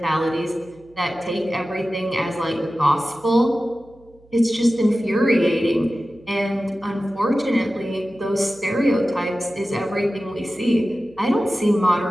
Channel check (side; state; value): right; noise; hum, 28 dB below the sound